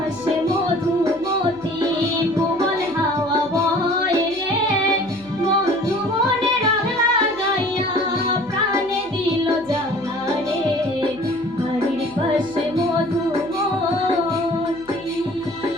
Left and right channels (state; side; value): noise; right; hum, 24 dB below the sound